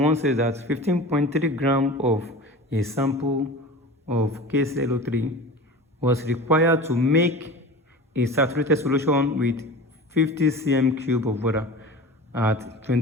one says that 15.3 gram of a sample of KClO3 was required to make a saturated solution with 50 cm cube of water at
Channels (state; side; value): normal; both; correlation 0.34